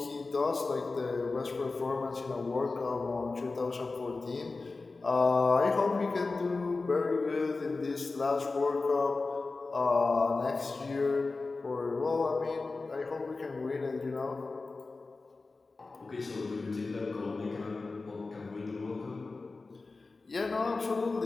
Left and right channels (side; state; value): right; quieter; 3.7 dB